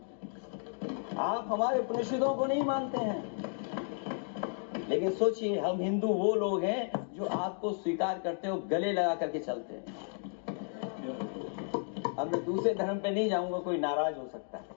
आप हमारे उपनिषदों को नहीं मानते हैं। लेकिन सोचिए, हम हिंदू वो लोग हैं जो आपको स्वीकार करते हो, गले लगा करके चलते हैं। अब मैं दूसरे धर्म पे नहीं जाऊंगा, कोई नाराज हो सकता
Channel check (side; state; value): right; silent; 56 dB below the other